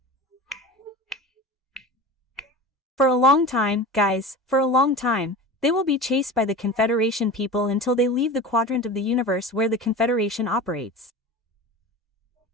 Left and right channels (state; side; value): normal; both; correlation 0.33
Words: For a long time, guys, for a long time, they will be chased by the Confederation people until they leave the quadrant of the universe where the Confederation operates.